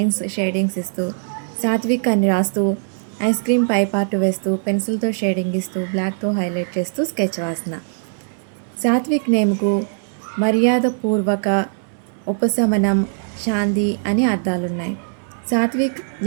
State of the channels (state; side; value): silent; left; digital silence